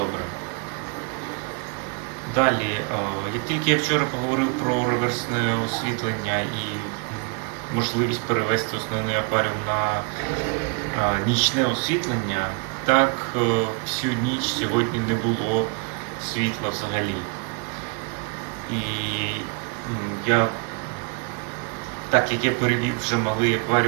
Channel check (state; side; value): quieter; left; 32.2 dB